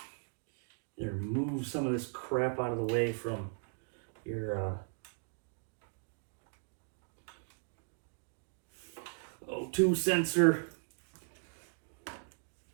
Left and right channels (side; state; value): left; silent; 53 dB below the other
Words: move some of this crap out of the way from your O2 sensor.